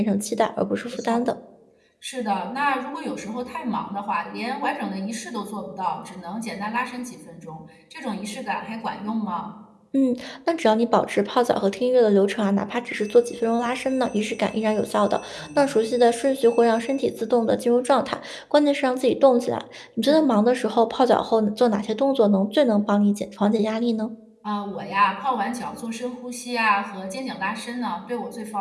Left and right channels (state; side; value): identical; both; correlation 1.00